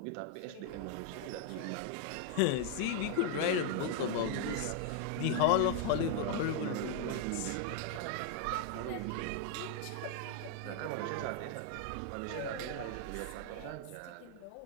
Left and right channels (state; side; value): different; both; correlation 0.00